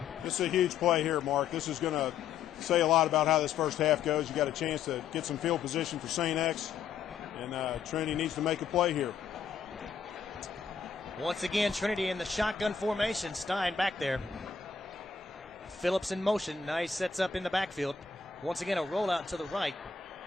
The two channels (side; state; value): right; quieter; 6.5 dB